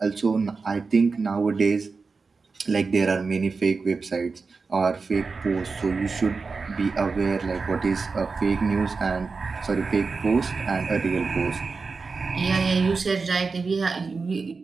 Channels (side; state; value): left; quieter; 4.5 dB